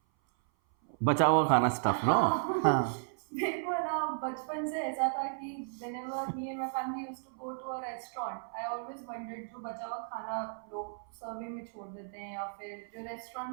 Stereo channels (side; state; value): left; silent; 55 dB below the other